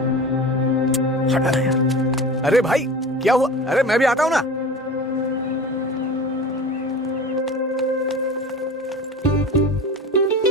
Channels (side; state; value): both; normal; correlation 0.35